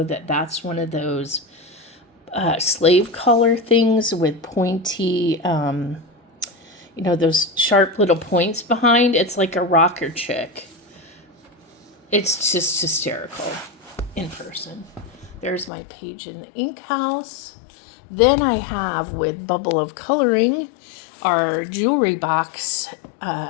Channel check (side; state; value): right; drops out; at 15.7 s